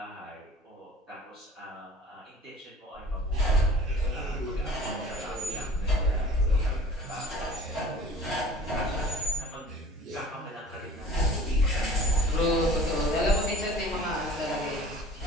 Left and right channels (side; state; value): both; normal; correlation 0.46